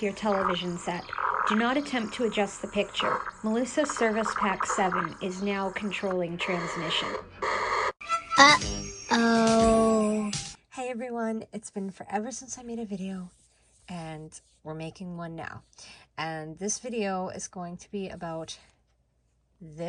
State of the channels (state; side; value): identical; both; correlation 1.00